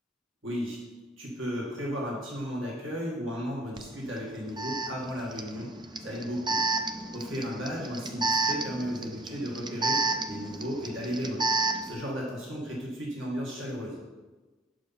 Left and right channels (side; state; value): both; normal; correlation 0.54